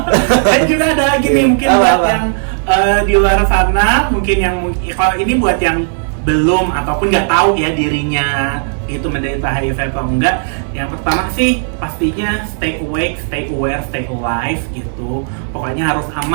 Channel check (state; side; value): silent; left; digital silence